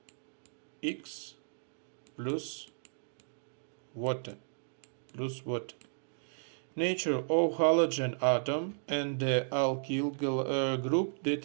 X plus water. Nature of halogen atom and the alkyl group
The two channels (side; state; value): left; silent; digital silence